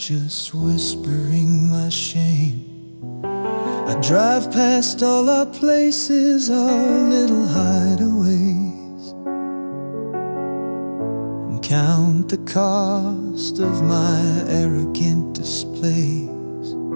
whispering my shame. I drive past all our places, our little hideaways, and count the cost of my arrogant displays.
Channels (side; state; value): both; inverted; correlation -1.00